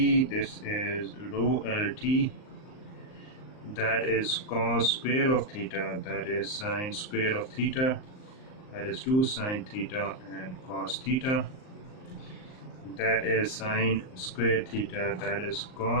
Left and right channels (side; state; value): right; late; 38 ms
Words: this is rho LT, that is cos square of theta, that is sine square of theta, that is 2 sine theta and cos theta, that is sine square theta, that is